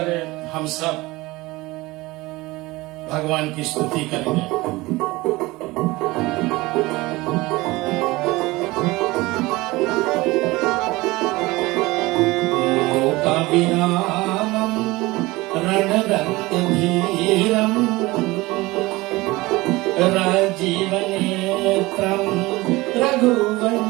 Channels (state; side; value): quieter; left; 20.9 dB